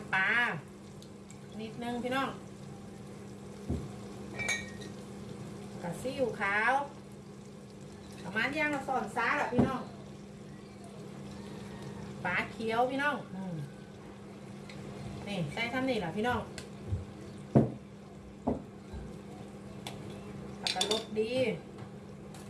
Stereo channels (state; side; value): identical; both; correlation 1.00